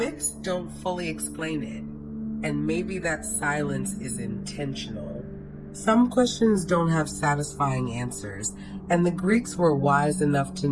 don't fully explain it, and maybe that silence is intentional. Some questions don't have satisfying answers, and the Greeks were wise enough to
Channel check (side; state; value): both; identical; correlation 1.00